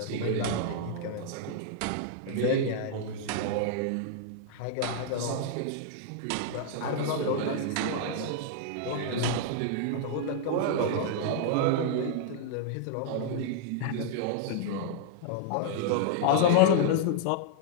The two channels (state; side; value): different; both; correlation -0.01